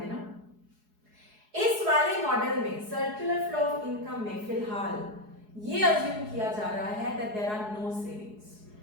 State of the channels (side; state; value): left; late; 4.8 ms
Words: इस वाले मॉडल में सर्कुलर फ्लो ऑफ इनकम में फिलहाल ये अज्यूम किया जा रहा है that there are no savings.